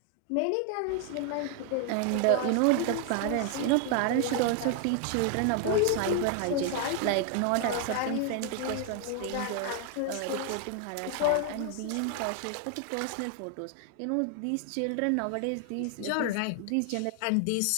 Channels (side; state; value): both; different; correlation 0.00